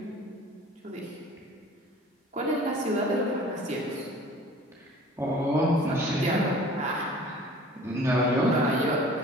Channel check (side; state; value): both; normal; correlation 0.46